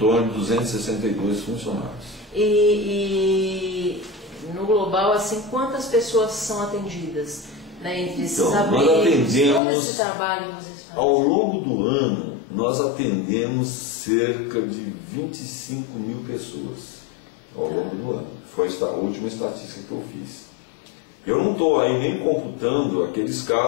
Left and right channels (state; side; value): drops out; right; at 9.6 s